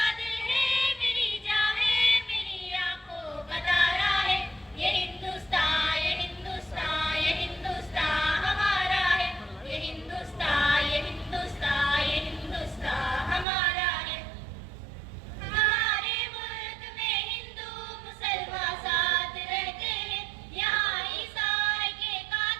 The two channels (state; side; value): drops out; left; at 13.5 s